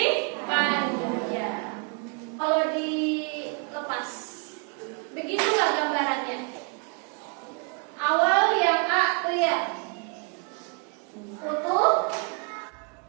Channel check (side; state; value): left; quieter; 36.9 dB